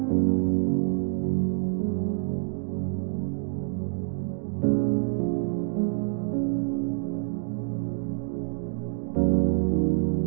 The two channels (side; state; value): left; silent; 60 dB below the other